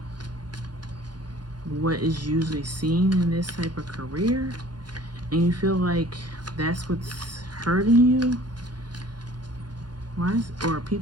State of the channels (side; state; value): left; late; 0.70 ms